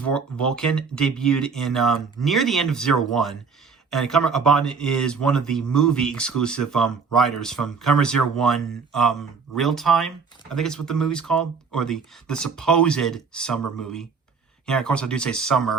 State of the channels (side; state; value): left; quieter; 5.3 dB